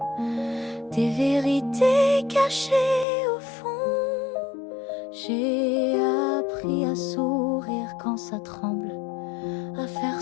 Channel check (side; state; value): right; drops out; at 3.1 s